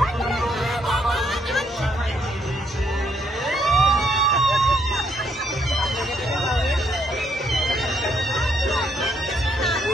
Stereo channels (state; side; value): normal; both; correlation 0.72